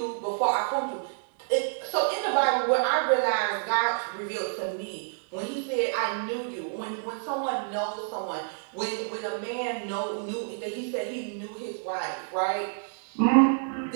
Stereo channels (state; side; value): silent; left; digital silence